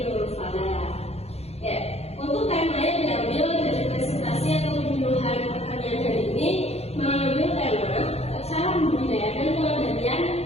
Nurul Falah. Ya, untuk tema yang diambil dari presentasi atau penyuluhan pertanian hari ini mengambil tema cara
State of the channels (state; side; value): late; right; 0.30 ms